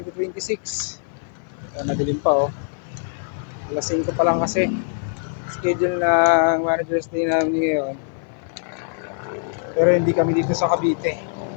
Madilim pa oh. Alas 5 pa lang kasi. Schedule ng Manager's Day namin ngayon. Pero hindi kami dito sa Cavite.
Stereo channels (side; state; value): right; silent; 56 dB below the other